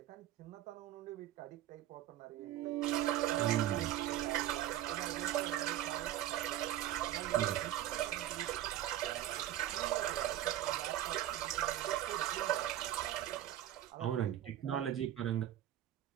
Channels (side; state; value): left; quieter; 12.8 dB